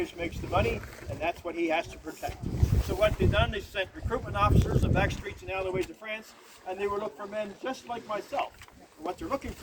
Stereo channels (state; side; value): identical; both; correlation 1.00